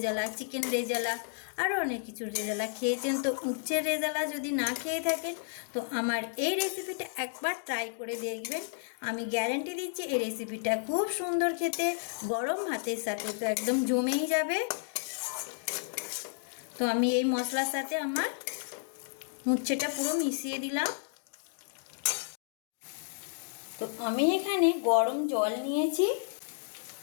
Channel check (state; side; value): silent; right; digital silence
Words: চিকেন রেজালা, আরও অনেক কিছু রেজালা খেয়েছেন। তো উচ্ছের রেজালা যদি না খেয়ে থাকেন তো আমার এই রেসিপিটা একবার ট্রাই করে দেখবেন। আমি গ্যারান্টি দিচ্ছি এই রেসিপিটা খুব সুন্দর খেতে, গরম ভাতের সাথে তো একদম জমেই যাবে। তো আমি এই মশলার সাথে আমার উচ্ছেটা পুরো মিশিয়ে দিলাম। তো আমি এখানে গরম জল নিয়েছি।